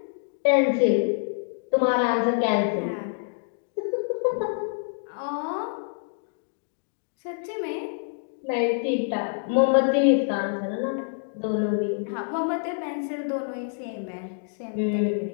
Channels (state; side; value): silent; right; digital silence